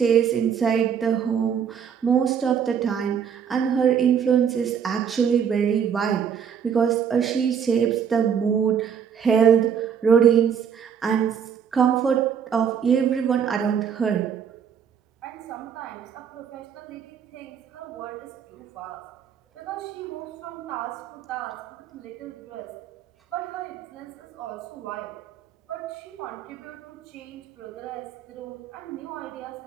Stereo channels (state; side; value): quieter; left; 7.7 dB